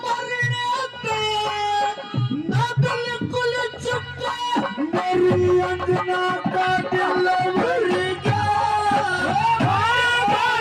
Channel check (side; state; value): both; identical; correlation 1.00